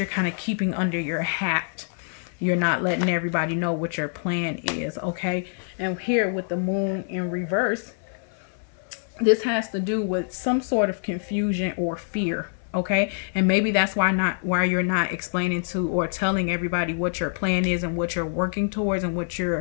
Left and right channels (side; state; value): right; silent; 59 dB below the other